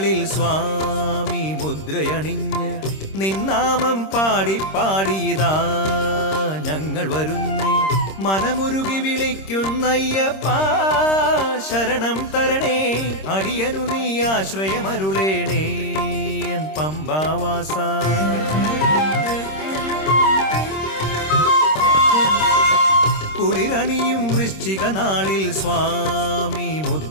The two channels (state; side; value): late; right; 26 ms